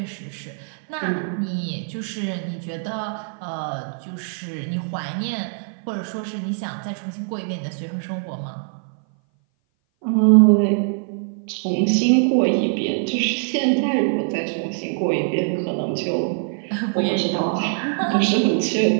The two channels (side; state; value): left; silent; 59 dB below the other